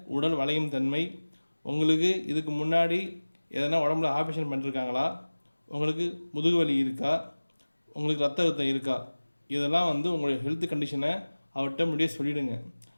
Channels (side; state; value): both; inverted; correlation -1.00